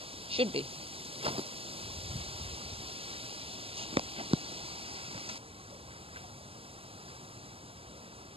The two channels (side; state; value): left; late; 0.27 ms